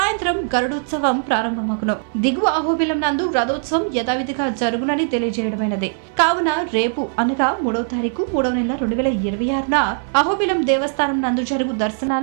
గరుడోత్సవం ప్రారంభమగును. దిగువ అహోబిలం నందు రథోత్సవం యథావిధిగా జరుగునని తెలియజేయడమైనది. కావున రేపు అనగా 3వ తారీఖు 3వ నెల 2026న అహోబిలం దేవస్థానం నందు జరుగు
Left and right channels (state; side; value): silent; left; 58 dB below the other